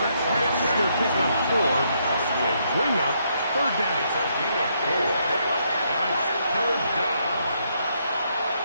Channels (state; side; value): inverted; both; correlation -0.75